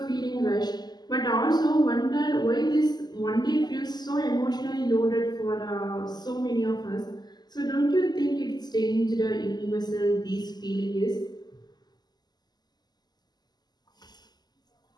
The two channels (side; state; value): right; late; 0.20 ms